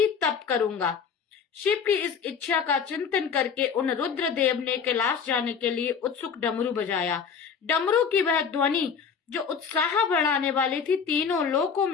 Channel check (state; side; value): quieter; right; 6.5 dB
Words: तप करूंगा। शिव की इस इच्छा का चिंतन करके उन रुद्र देव ने कैलाश जाने के लिए उत्सुक डमरू बजाया। डमरू की वह ध्वनि जो उत्साह बढ़ाने वाली थी तीनों लोकों